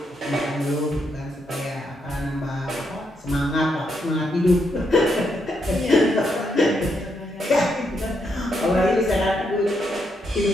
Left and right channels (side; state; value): both; normal; correlation 0.79